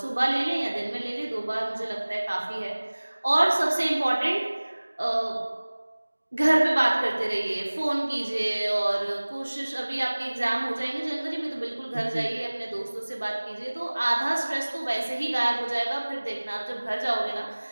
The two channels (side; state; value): both; inverted; correlation -1.00